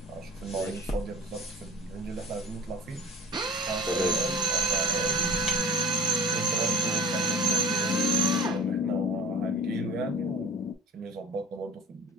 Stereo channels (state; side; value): normal; both; correlation 0.39